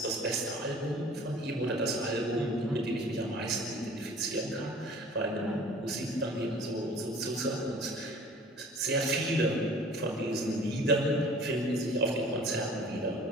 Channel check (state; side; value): normal; both; correlation 0.47